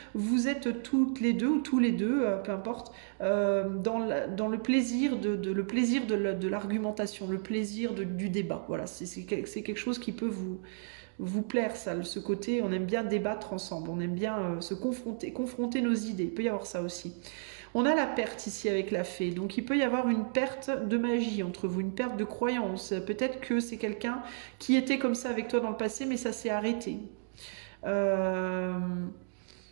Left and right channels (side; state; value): left; silent; digital silence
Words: vous êtes toutes les deux ou tous les deux, peu importe, dans le plaisir de l'argumentation, le plaisir du débat. Voilà, c'est quelque chose qui peut vous plaire, ça, ce côté. On aime bien débattre ensemble, on aime bien se confronter nos idées. Il peut y avoir ça aussi. On a la perte ici avec la fée, donc il peut y avoir une perte de magie entre vous, une perte de croyance. Peut-être que c'est quelqu'un qui était comme ça avec toi dans le passé, mais ça s'est arrêté. Euh,